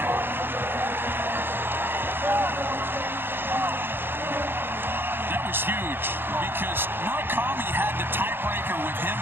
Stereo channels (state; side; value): late; left; 0.10 ms